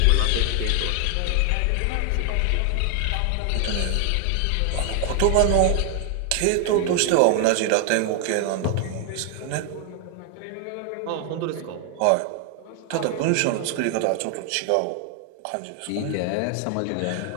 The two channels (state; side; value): different; both; correlation 0.00